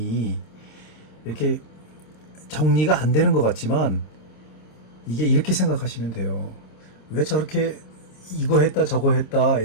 이렇게 정리가 안 되는 것 같지만 이게 이렇게 생각하시면 돼요. 왜 저렇게 이거 했다 저거 했다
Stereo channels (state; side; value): late; right; 26 ms